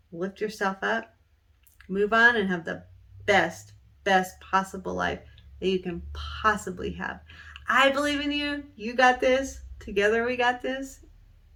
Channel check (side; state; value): both; identical; correlation 1.00